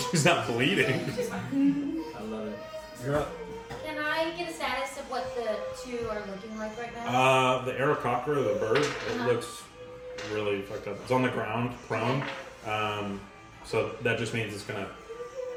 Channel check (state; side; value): identical; both; correlation 1.00